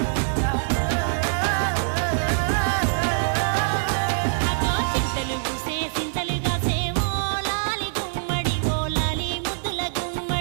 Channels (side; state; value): left; silent; 59 dB below the other